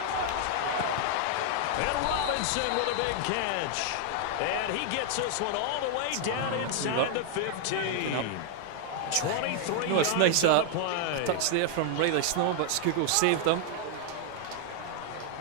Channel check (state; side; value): different; both; correlation 0.00